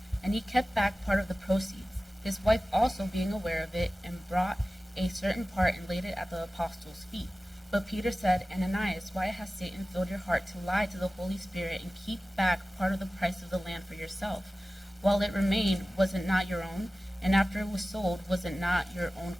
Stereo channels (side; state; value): both; normal; correlation 0.96